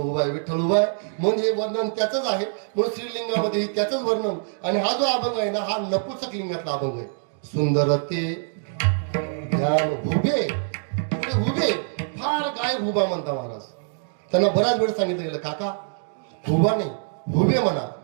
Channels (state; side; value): silent; left; digital silence